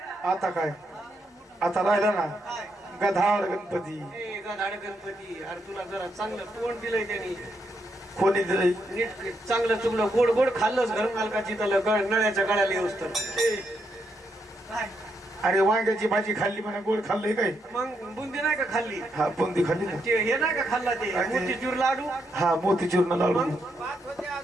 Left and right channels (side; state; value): both; normal; correlation 0.79